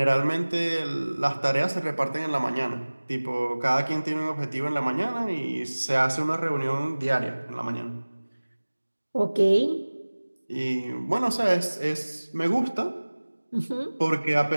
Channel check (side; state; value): both; inverted; correlation -1.00